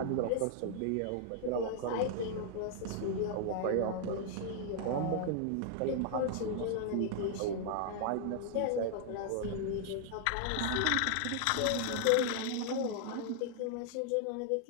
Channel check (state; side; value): different; both; correlation -0.01